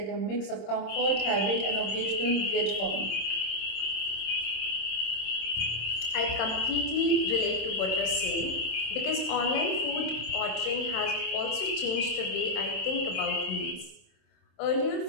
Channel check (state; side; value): late; right; 27 ms